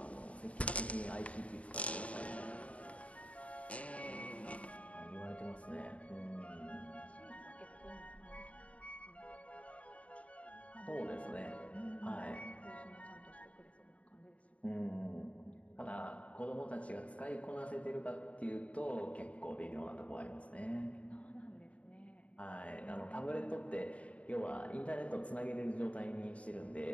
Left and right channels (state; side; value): late; right; 0.065 ms